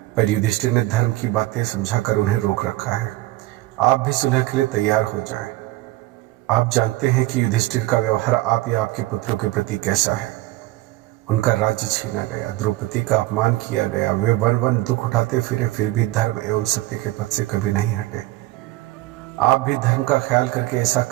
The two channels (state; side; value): quieter; left; 18.3 dB